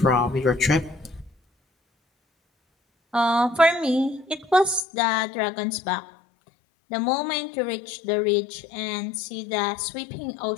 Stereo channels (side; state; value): right; drops out; at 4.8 s